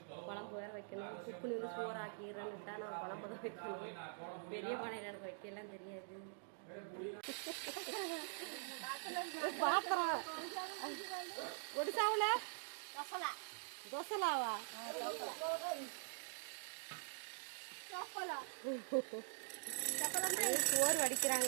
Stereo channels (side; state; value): left; silent; digital silence